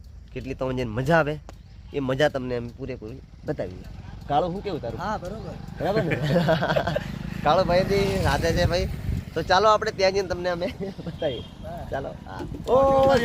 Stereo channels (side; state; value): both; identical; correlation 1.00